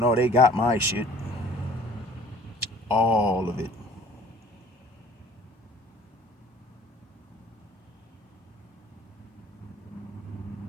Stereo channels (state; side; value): normal; both; correlation 0.52